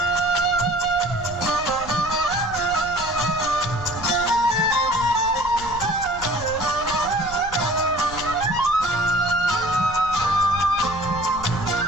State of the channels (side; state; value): left; noise; rumble, 14 dB below the sound